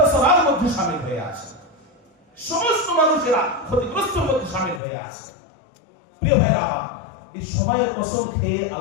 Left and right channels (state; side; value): drops out; right; at 4.8 s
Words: মধ্যে শামিল হয়ে আছে, সমস্ত মানুষেরা ক্ষতিগ্রস্তের মধ্যে শামিল হয়ে আছে। প্রিয় ভাইরা আমার, এই সময়ের কসম খেয়ে